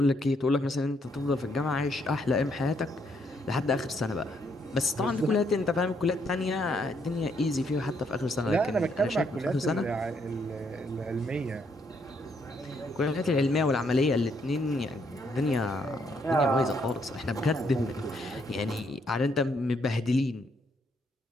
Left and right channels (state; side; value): normal; both; correlation 0.72